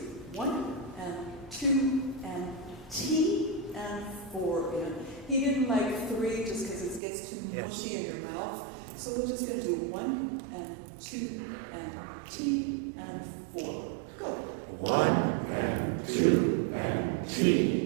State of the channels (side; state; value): left; drops out; at 7.0 s